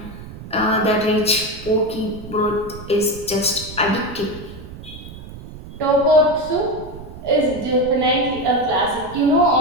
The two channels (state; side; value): noise; right; rumble, 14 dB below the sound